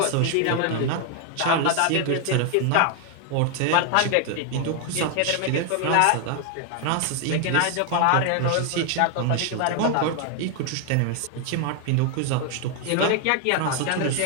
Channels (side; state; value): both; different; correlation 0.00